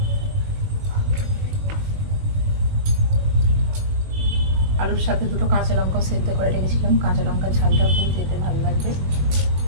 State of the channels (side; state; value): left; late; 21 ms